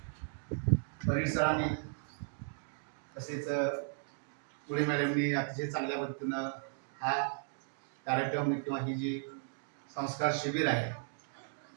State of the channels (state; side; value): silent; left; digital silence